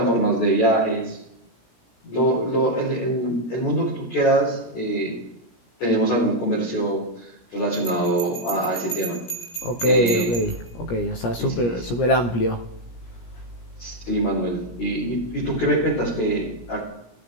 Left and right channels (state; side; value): late; right; 17 ms